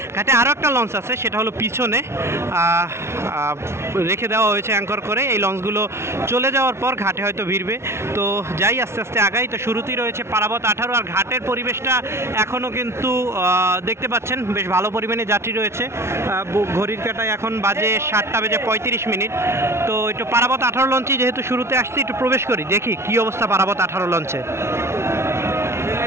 ঘাটে আরও একটা লঞ্চ আছে, সেটা হলো পিছনে রেখে দেওয়া হয়েছে অ্যাঙ্কর করে। এই লঞ্চগুলো চলে যাওয়ার পর ঘাটে হয়তো ভিড়বে। তো যাই আস্তে আস্তে আগাই। তো শুরুতেই রয়েছে পারাবত 18। আর ঘাটের পরিবেশটা এখনও কিন্তু দেখতে পাচ্ছেন বেশ ভালো পরিমাণে যাত্রী রয়েছে। ঘড়ির কাঁটায় এখন বাজে 7:35। তো একটু পারাবত 18 লঞ্চই যেহেতু শুরুতে আসছি, একটু প্রবেশ করি, দেখি কী অবস্থা পারাবত 18 লঞ্চে।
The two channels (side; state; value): left; late; 0.13 ms